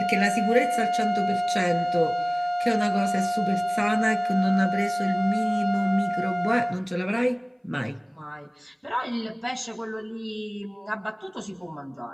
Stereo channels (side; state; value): both; identical; correlation 1.00